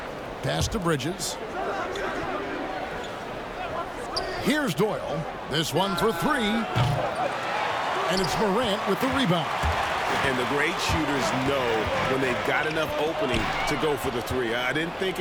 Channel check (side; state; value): both; identical; correlation 1.00